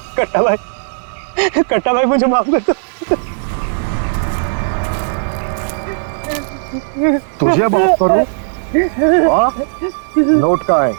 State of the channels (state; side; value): silent; left; digital silence